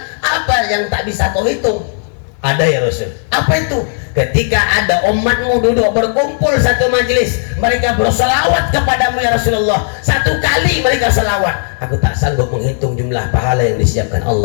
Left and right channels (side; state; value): right; silent; digital silence